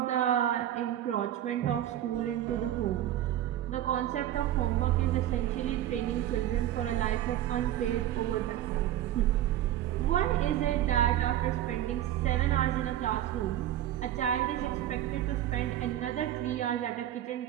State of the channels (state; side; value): quieter; left; 12.4 dB